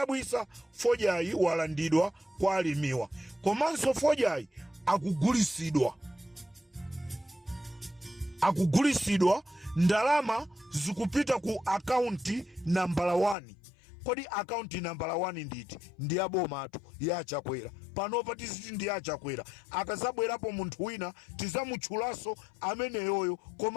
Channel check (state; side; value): drops out; right; at 13.4 s